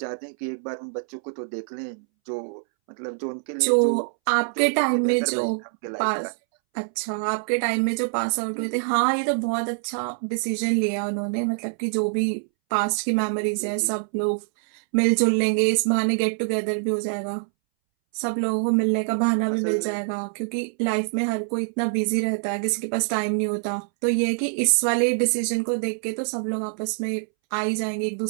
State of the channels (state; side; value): silent; left; 62 dB below the other